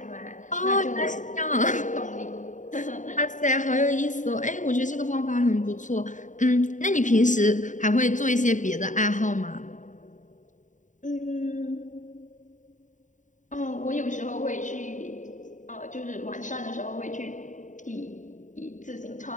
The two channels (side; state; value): right; late; 0.36 ms